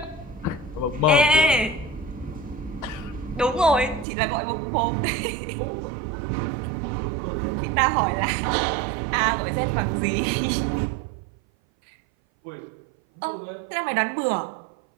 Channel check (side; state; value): left; drops out; at 4.0 s